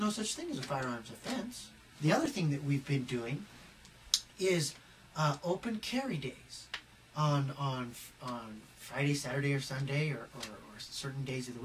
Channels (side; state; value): both; identical; correlation 1.00